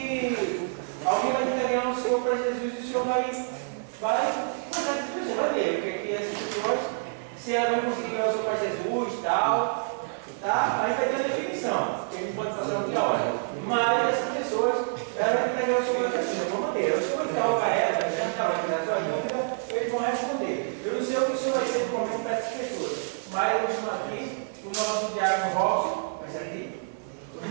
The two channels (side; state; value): left; silent; digital silence